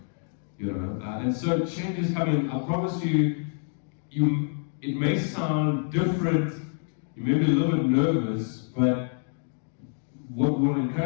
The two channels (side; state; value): right; silent; 56 dB below the other